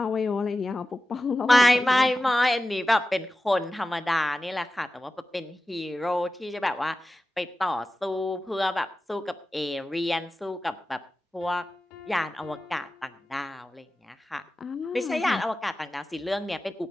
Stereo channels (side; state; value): both; normal; correlation 0.94